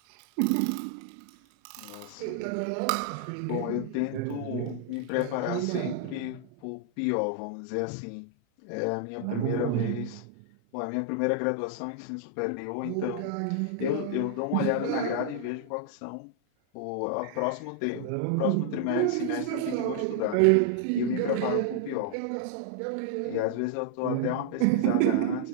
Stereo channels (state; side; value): different; both; correlation -0.01